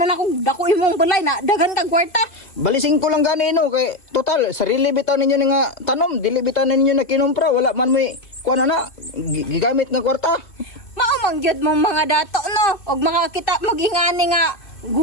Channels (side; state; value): right; late; 2.3 ms